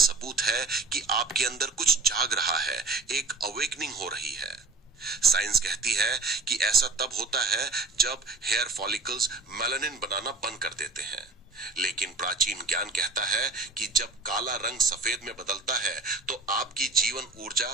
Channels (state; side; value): quieter; left; 3.7 dB